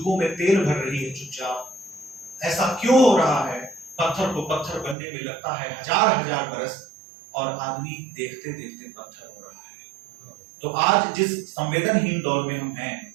में तेल भर रही है चुपचाप। ऐसा क्यों हो रहा है, पत्थर को पत्थर बनने में लगता है हजार हजार बरस और आदमी देखते देखते पत्थर हो रहा है। तो आज जिस संवेदनहीन दौर में हम हैं,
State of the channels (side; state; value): left; drops out; at 5.0 s